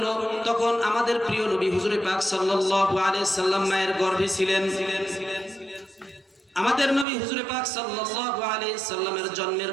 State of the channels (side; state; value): left; drops out; at 7.1 s